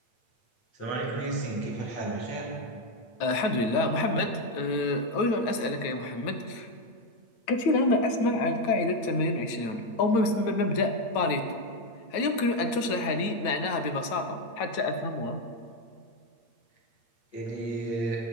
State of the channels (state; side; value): late; right; 8.7 ms